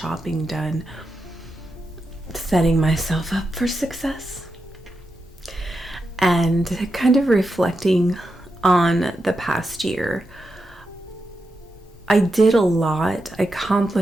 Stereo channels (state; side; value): normal; both; correlation 0.87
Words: done, setting myself up for success, and kind of reflecting on the past year. I did a lot, I